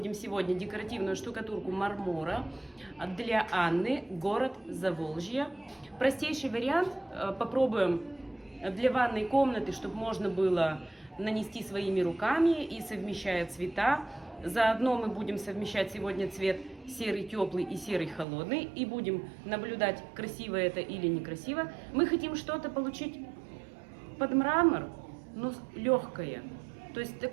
сегодня декоративную штукатурку мармора для Анны, город Заволжье. Простейший вариант. Попробуем для ванной комнаты, чтобы можно было нанести своими руками и совмещая цвета. Заодно мы будем совмещать сегодня цвет серый теплый и серый холодный. И будем наблюдать, красиво это или некрасиво. Мы хотим что-то получить под мрамор, но легкое. То есть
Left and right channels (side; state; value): left; drops out; at 18.2 s